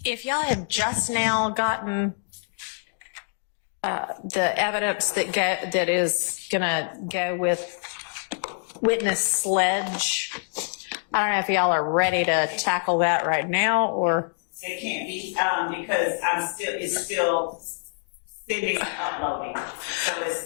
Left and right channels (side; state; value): right; silent; digital silence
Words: If y'all have just now gotten the evidence that is going to go with witness Sledge, I don't know if y'all are ready to tackle that right now or. It can't be because it's still sending and uploading. So